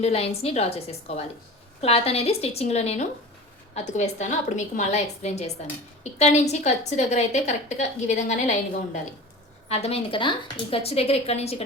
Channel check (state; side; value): normal; both; correlation 0.35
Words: లైన్స్ని డ్రా చేసేసుకోవాలి. క్లాత్ అనేది స్టిచ్చింగ్లో నేను అతుకు వేస్తాను, అప్పుడు మీకు మళ్ళీ ఎక్స్ప్లెయిన్ చేస్తాను. ఇక్కడ నుంచి ఖర్చు దగ్గర అయితే కరెక్ట్గా ఈ విధంగానే లైన్గా ఉండాలి. అర్థమైంది కదా? ఈ ఖర్చు దగ్గర ఇక్కడ నుంచి